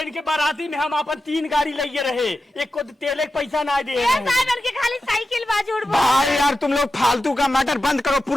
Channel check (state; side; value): normal; both; correlation 0.91